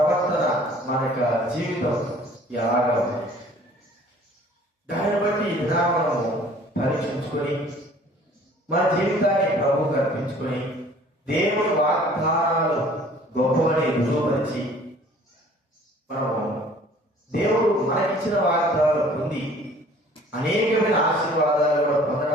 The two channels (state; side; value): normal; both; correlation 0.52